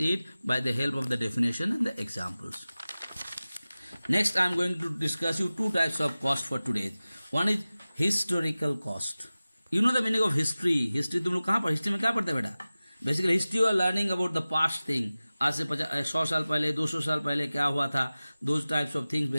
it by the help of the definition and the examples. Next, I am going to discuss you two types of cost for today. One is historical cost. You know the meaning of history. History तुम लोग कहाँ पर, history में क्या पढ़ते बेटा? Basically history you are learning about the past thing. आज से 100 साल पहले 200 साल पहले क्या हुआ था, those types of things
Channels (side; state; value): both; inverted; correlation -0.97